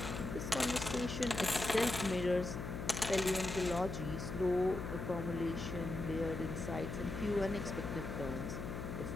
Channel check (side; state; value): left; noise; hum, 5 dB below the sound